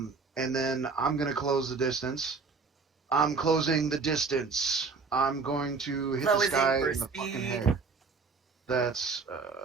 then I'm gonna close the distance. I'm closing the distance. I'm going to hit this Closing guy for in the fucking speed. head. That's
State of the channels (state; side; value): quieter; left; 4.6 dB